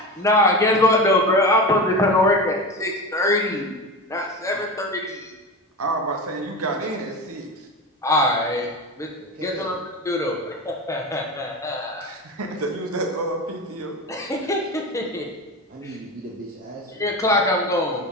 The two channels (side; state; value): both; normal; correlation 0.25